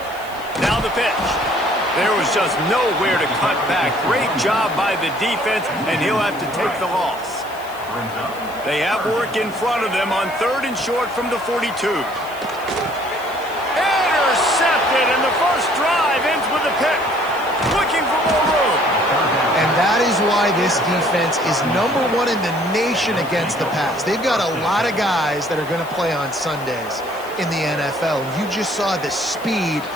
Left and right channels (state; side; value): noise; left; hiss, 20 dB below the sound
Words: Now the pitch. There was just nowhere to cut back. Great job by the defense, and he'll have to take the loss. They have work in front of them on 3rd and short from the 42. Intercepted, and the first drive ends with a pick. Looking for more room. And that is why this defense is #1 in the nation against the pass. They've got a lot of guys that are going to play on Sundays in the NFL. You just saw the speed